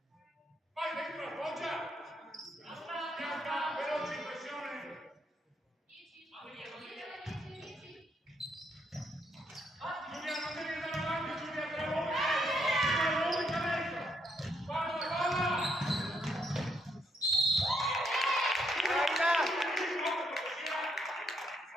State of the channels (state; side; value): normal; both; correlation 0.75